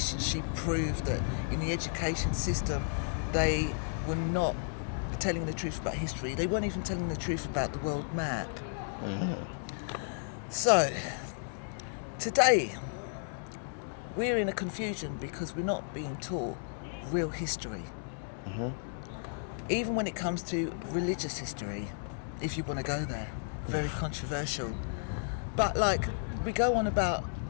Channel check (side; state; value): right; silent; digital silence